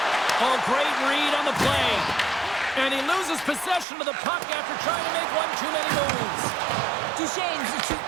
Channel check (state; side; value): drops out; left; at 3.9 s